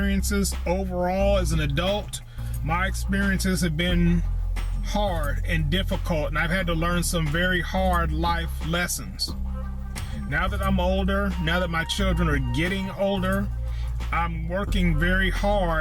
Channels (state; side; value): identical; both; correlation 1.00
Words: overall as an adult, my experiences have been hard and difficult, and I've had to learn some very hard life lessons. Now that I'm older, now that my children are getting older, I'm working very